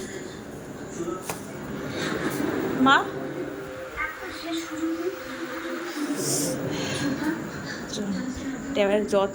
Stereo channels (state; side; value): identical; both; correlation 1.00